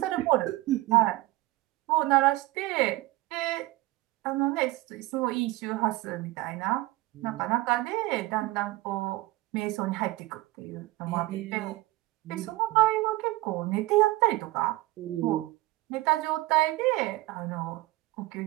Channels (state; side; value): quieter; left; 19.5 dB